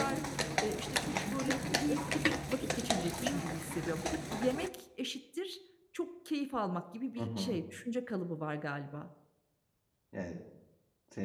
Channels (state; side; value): identical; both; correlation 1.00